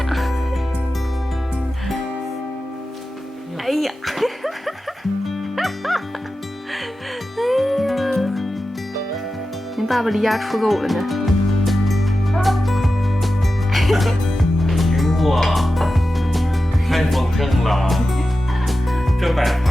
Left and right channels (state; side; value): normal; both; correlation 0.93